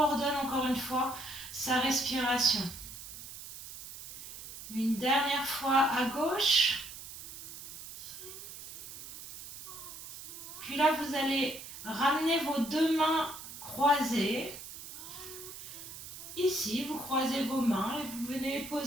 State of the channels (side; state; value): right; noise; hiss, 12 dB below the sound